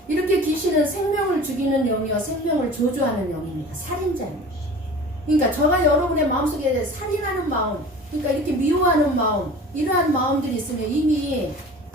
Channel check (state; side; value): normal; both; correlation 0.40